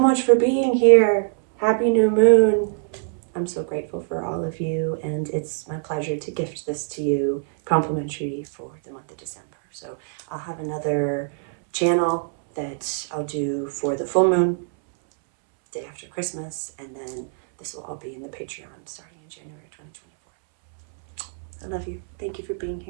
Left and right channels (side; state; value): left; silent; 62 dB below the other